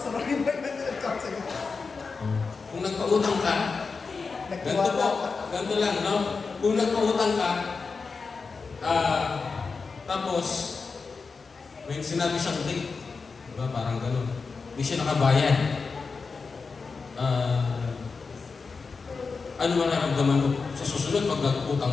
Rolly pwede ng counseling. kung nagpautang ka, ganito po, ganito lang, no? Kung nagpautang ka, tapos, may sinabi siyang date, diba? Parang gano'n. Hindi siya nakabayad. Ano man naramdaman mo? Sa susunod, pag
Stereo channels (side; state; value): right; quieter; 4.7 dB